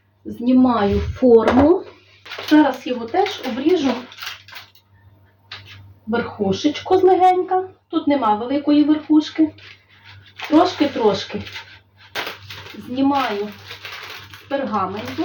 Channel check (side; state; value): both; identical; correlation 1.00